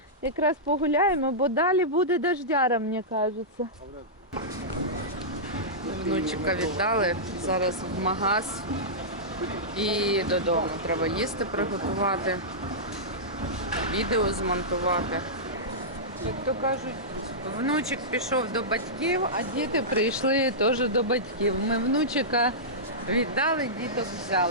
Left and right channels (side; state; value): both; normal; correlation -0.15